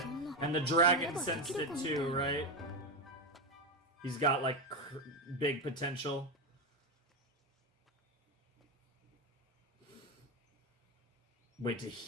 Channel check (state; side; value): normal; both; correlation 0.11